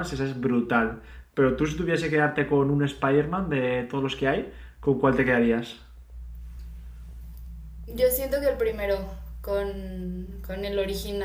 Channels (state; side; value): identical; both; correlation 1.00